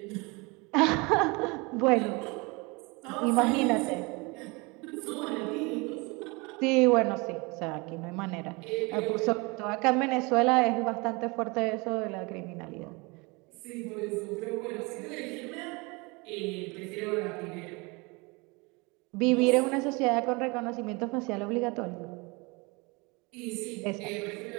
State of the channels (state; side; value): quieter; left; 27.1 dB